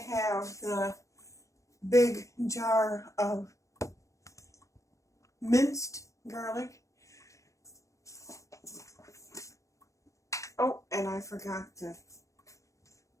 the big jar of minced garlic. Oh, and I forgot to.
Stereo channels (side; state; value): right; late; 0.15 ms